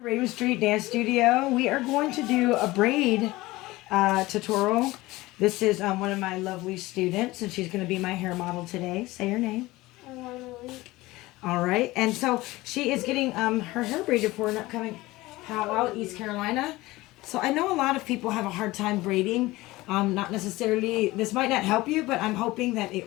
Raven Street Dance Studio. We are going to do a braid tutorial. This is one of my lovely students, and she's going to be my hair model today. Say her name. Alana Lynch. All right, and so she is getting her hair braided for an upcoming powwow, East Carolina. So I know a lot of people have a hard time braiding. Not necessarily, this might not help you, but I'm hoping that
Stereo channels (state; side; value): quieter; right; 19.4 dB